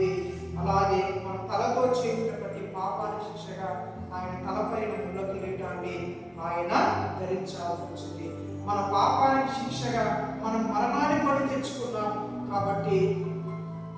అలాగే మన తలతో చేసిన ప్రతి పాపానికి శిక్షగా ఆయన తలపైన ముళ్ళ కిరీటాన్ని ఆయన ధరించాల్సి వచ్చింది. మన పాపానికి శిక్షగా మనం మరణాన్ని కొని తెచ్చుకున్నాం. కాబట్టి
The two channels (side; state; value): both; identical; correlation 1.00